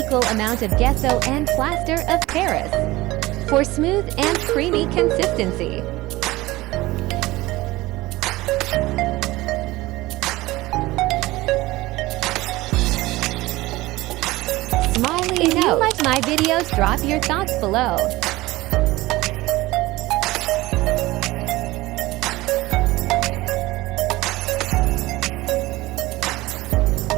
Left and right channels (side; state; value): left; quieter; 19.2 dB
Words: amount of Gesso and Plaster of Paris for smooth and creamy consistency. Smiley note. If you like my videos, drop your thoughts below.